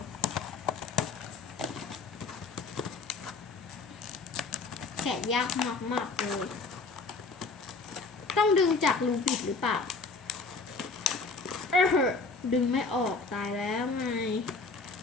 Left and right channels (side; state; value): right; quieter; 4.1 dB